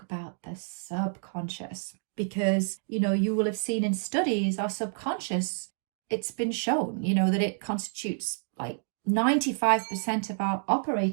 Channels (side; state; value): left; silent; digital silence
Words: about the subconscious, because, you will have seen in studies, our subconscious, it's been shown, that it constitutes like 95% of our